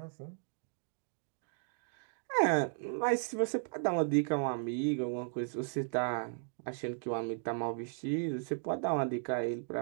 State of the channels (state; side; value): silent; left; digital silence